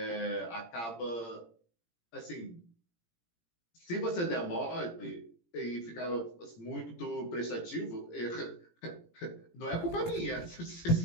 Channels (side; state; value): right; late; 17 ms